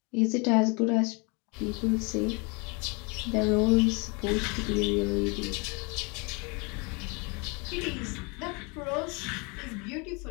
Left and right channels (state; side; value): quieter; right; 30.5 dB